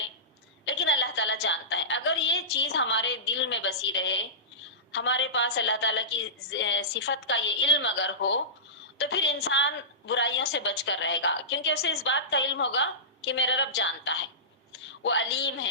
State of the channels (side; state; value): both; normal; correlation -0.17